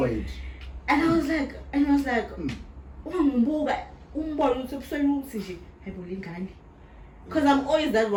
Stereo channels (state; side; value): identical; both; correlation 1.00